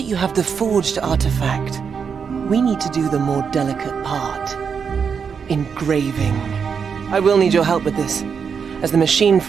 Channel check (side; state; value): left; quieter; 6.4 dB